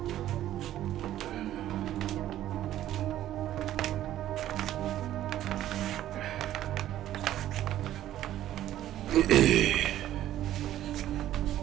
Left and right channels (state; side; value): quieter; left; 12.8 dB